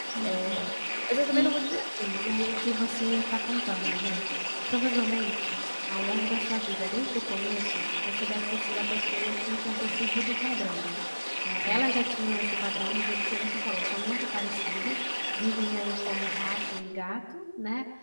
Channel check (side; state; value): both; inverted; correlation -1.00